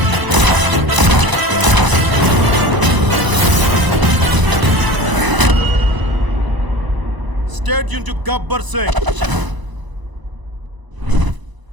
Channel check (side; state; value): left; late; 1.0 ms